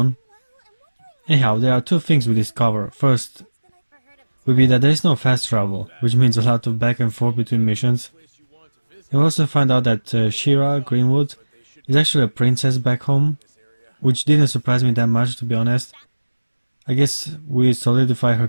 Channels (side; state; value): both; inverted; correlation -1.00